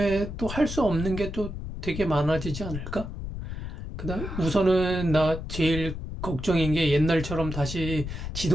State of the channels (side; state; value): left; noise; rumble, 7 dB below the sound